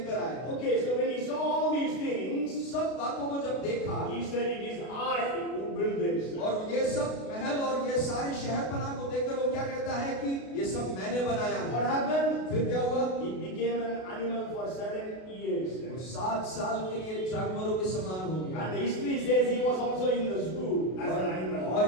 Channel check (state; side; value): late; right; 32 ms